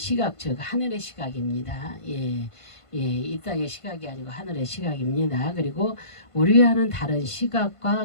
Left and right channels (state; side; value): late; right; 1.5 ms